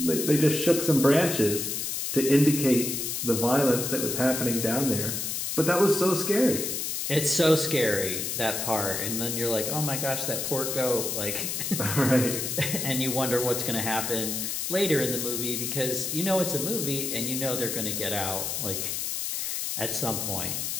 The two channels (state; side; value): noise; left; hiss, 2 dB below the sound